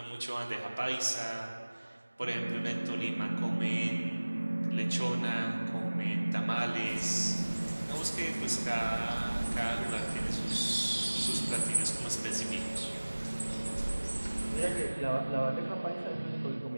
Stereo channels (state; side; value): inverted; both; correlation -1.00